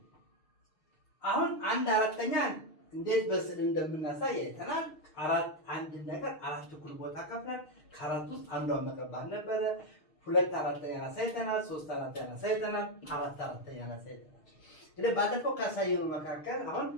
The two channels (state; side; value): late; right; 6.5 ms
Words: አሁን 1/4ኛ እንዴት በስዕል እንደምናሳይ አይተናል። አንድ ነገር 4 እኩል ቦታ ከፍለን ከ4 ውስጥ አንዷን መቀባት ነበረ። 2/4ኛ አሳይተናል፣ 3/4ኛ አሳይተናል፣ 4/4ኛ አሳይተናል። እንግዲህ ባለፈው ካሳየነው መካከል አሁን